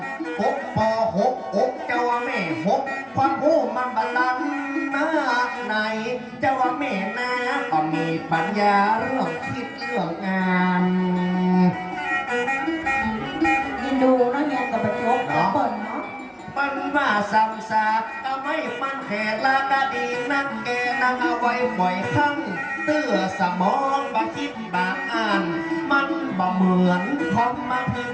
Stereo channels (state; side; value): identical; both; correlation 1.00